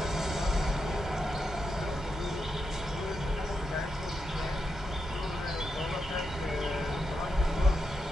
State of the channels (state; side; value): normal; both; correlation 0.86